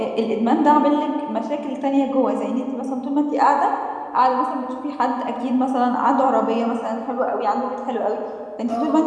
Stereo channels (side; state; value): both; identical; correlation 1.00